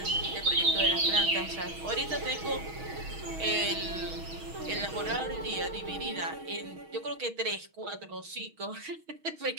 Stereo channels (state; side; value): late; left; 6.3 ms